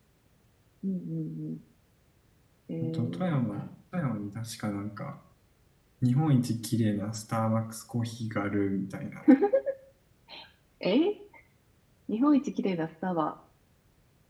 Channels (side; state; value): both; identical; correlation 1.00